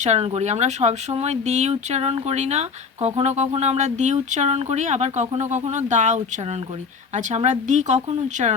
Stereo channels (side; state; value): right; quieter; 5.4 dB